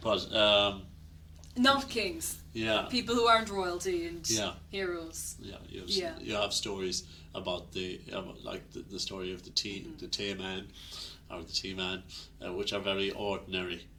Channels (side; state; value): both; identical; correlation 1.00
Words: but not kings. Yeah. People who aren't royalty and heroes. Yeah. You have stories about the story of the tea man, or the tea man, which are very ordinary.